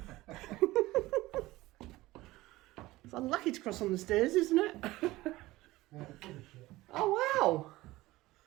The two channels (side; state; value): left; quieter; 18.4 dB